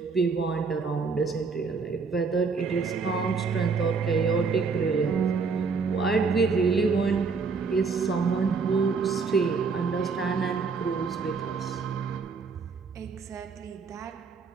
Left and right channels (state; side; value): quieter; left; 4.9 dB